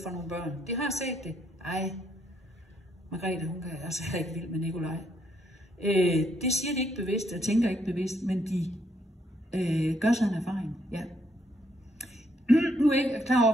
for nogle børn. De har set det. Ej, Margrethe, hun kan altså ikke vild med Nikolaj. Det siger de ikke bevidst, og tænker ikke bevidst, men de gør sig en erfaring. Ja. Nu er jeg ikke klar over,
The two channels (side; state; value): both; normal; correlation 0.73